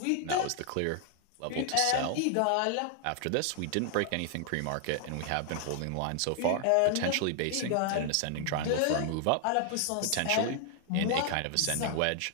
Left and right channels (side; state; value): both; different; correlation 0.00